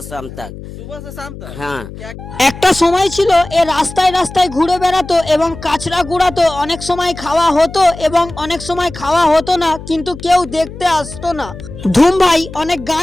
शाम तक। सुबह से शाम तक? हाँ, क्या একটা সময় ছিল এ রাস্তায় রাস্তায় ঘুরে বেড়াতো এবং কাচরা গুড়াতো। অনেক সময় খাওয়া হতো এবং অনেক সময় খাওয়া হতো না, কিন্তু কেউ দেখতে আসতো না। ধুম ভাই অনেক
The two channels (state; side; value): noise; left; hum, 13 dB below the sound